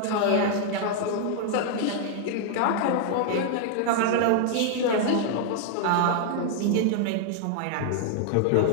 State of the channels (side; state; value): both; different; correlation 0.00